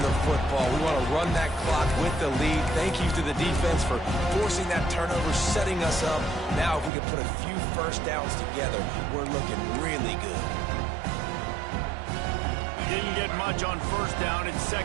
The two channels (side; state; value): left; drops out; at 6.9 s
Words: the football. We want to run that clock with the lead. Thank you to the defense for forcing that turnover, setting us up. Now if we can put a few 1st downs together, we're looking really good. Didn't get much on 1st down. It's